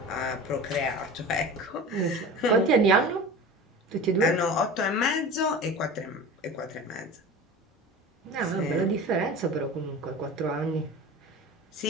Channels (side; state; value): both; normal; correlation 0.35